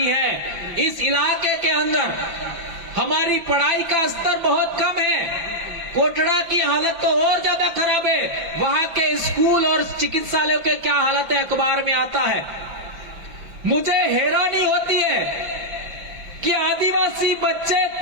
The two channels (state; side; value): late; left; 6.0 ms